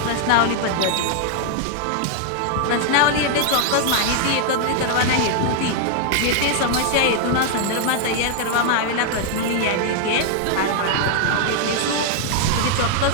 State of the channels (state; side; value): different; both; correlation 0.00